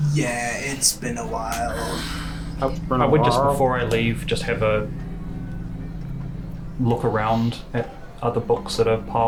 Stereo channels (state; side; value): identical; both; correlation 1.00